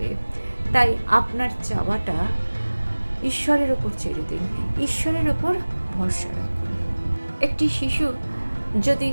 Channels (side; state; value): both; inverted; correlation -1.00